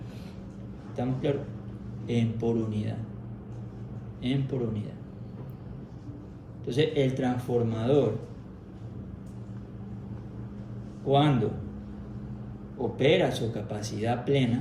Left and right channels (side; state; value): both; identical; correlation 1.00